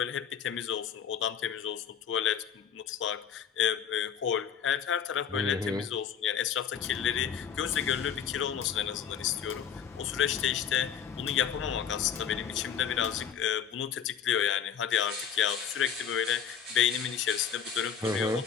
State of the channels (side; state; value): right; quieter; 8.0 dB